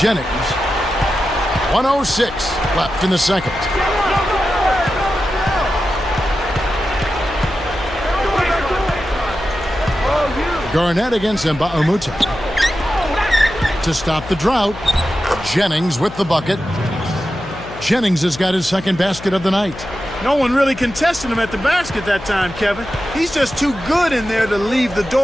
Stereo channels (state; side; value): noise; left; hum, 14 dB below the sound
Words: Jennings. 1:06 left in the second. Garnett against Mbamute. To stop the drought, Jennings with the bucket. Jennings has got his second basket of the night. No one really contested him at the basket that time, Kevin. He's just too good in there to leave the